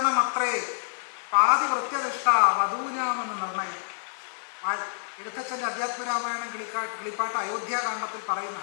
പാതി വൃത്യനിഷ്ഠ വധൂനാമെന്ന് നിർണയം. എഴുത്തച്ഛൻ്റെ അധ്യാത്മരാമായണം കിളിപ്പാട്ട് അയോധ്യാകാണ്ഡത്തിൽ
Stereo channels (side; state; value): right; silent; 60 dB below the other